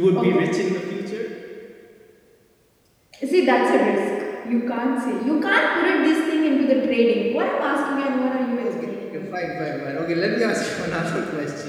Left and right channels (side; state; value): both; identical; correlation 1.00